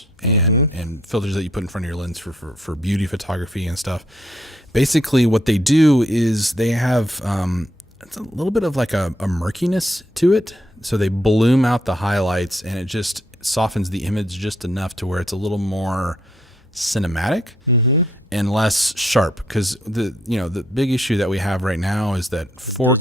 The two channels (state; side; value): normal; both; correlation 0.72